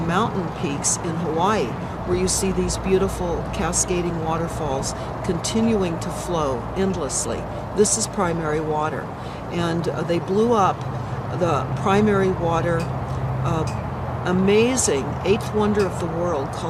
peaks in Hawaii, where you see these beautiful cascading waterfalls continuing to flow endlessly. This is primary water. And they blew up the primary water amazing eighth wonder of the world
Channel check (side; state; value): both; identical; correlation 1.00